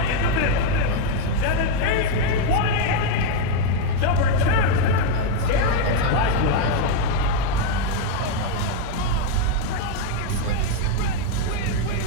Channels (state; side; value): different; both; correlation 0.01